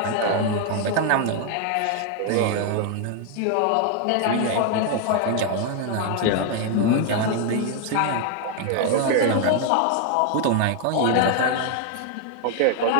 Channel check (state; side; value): different; both; correlation 0.00